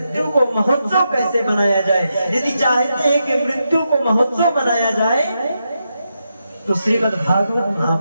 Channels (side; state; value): both; inverted; correlation -0.85